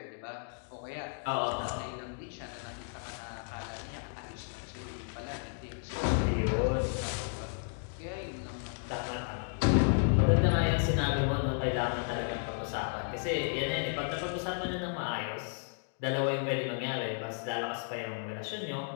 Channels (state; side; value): silent; right; 56 dB below the other